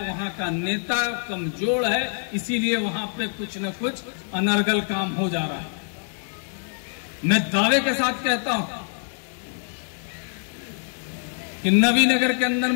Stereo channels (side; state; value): right; silent; digital silence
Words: वहां का नेता कमजोर है, इसीलिए वहां पे कुछ न कुछ अनर्गल काम हो जा रहा है। मैं दावे के साथ कहता हूं कि नवीनगर के अंदर